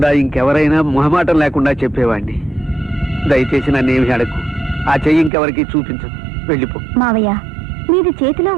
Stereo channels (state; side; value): drops out; left; at 5.3 s